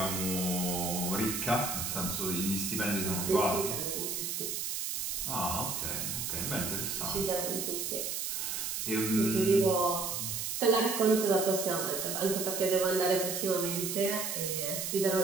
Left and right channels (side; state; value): right; noise; hiss, 2 dB below the sound